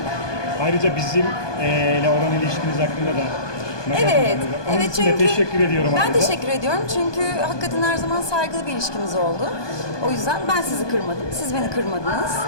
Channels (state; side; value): late; right; 1.2 ms